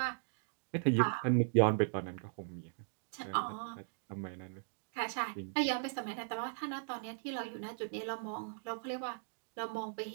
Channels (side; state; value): left; silent; digital silence